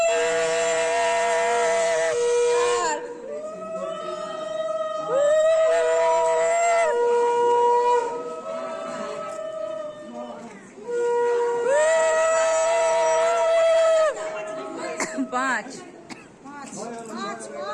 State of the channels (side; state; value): both; identical; correlation 1.00